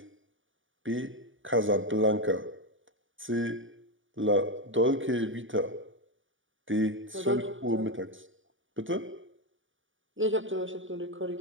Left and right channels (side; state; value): left; late; 0.57 ms